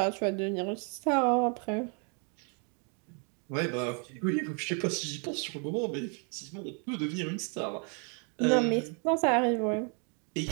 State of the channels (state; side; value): quieter; left; 38.5 dB